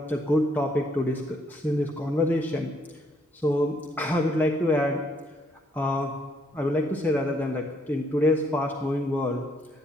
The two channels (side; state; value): both; normal; correlation 0.70